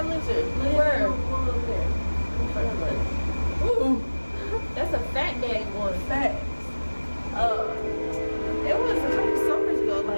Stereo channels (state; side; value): inverted; both; correlation -1.00